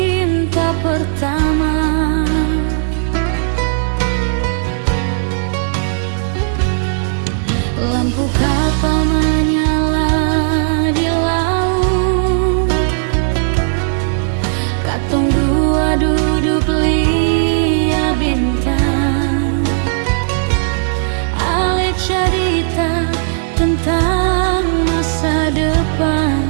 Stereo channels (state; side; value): silent; left; digital silence